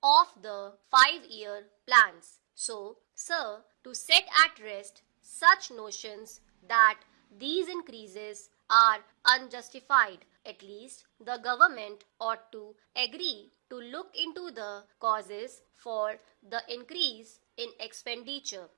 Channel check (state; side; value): silent; left; digital silence